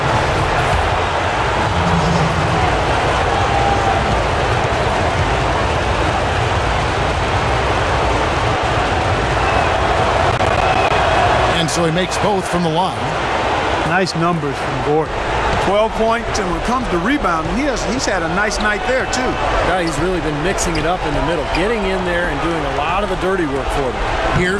And so he makes both from the line. Nice numbers from Gordon. 12 points, and when it comes to rebounding, he's had a nice night there, too. Yeah, he's really been mixing it up in the middle, getting in there and doing a lot of the dirty work for them.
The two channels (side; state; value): both; identical; correlation 1.00